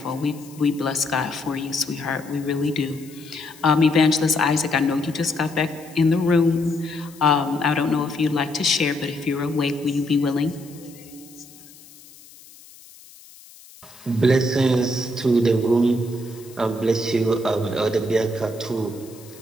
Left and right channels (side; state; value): left; noise; hiss, 22 dB below the sound